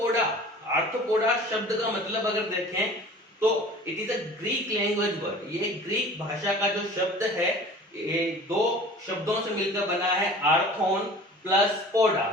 शब्द का मतलब अगर देखें तो it is a Greek language word. ये ग्रीक भाषा का जो शब्द है ये दो शब्दों से मिलकर बना है, आर्थोन प्लस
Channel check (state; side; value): normal; both; correlation 0.43